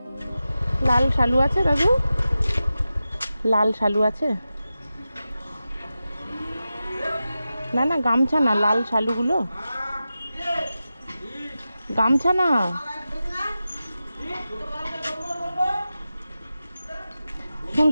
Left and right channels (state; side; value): inverted; both; correlation -0.93